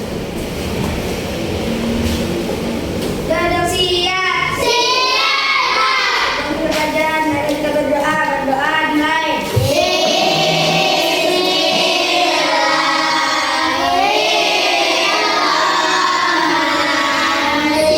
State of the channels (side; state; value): both; identical; correlation 1.00